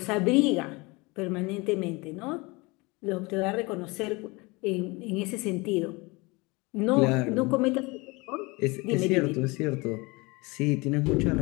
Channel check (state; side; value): quieter; right; 25.4 dB